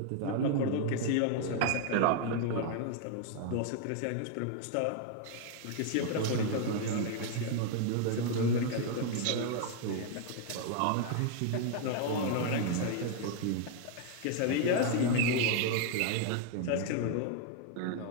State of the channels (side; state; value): both; different; correlation 0.00